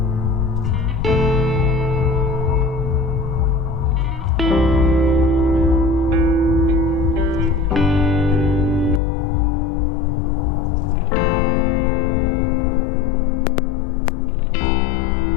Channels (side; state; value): right; drops out; at 9.0 s